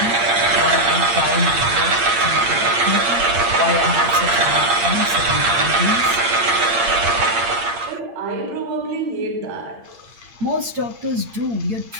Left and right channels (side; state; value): left; late; 8.7 ms